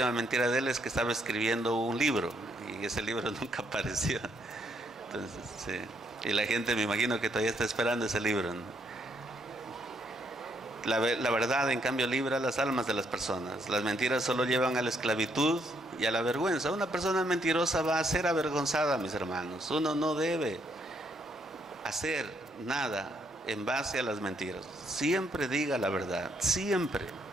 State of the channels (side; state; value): both; normal; correlation 0.72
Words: mentira de él es que estaba escribiendo un libro y ese libro nunca apareció. Entonces, sí. Y la gente, me imagino que todavía está esperando ese libro, ¿no? La verdad, en cambio, libra las almas de las personas. Las mentiras solo llevan a la esclavitud y a la vergüenza. Una persona mentirosa va a ser avergonzada, mis hermanos. Uno no debe hacer nada en base a las mentiras. Siempre diga la verdad, siempre.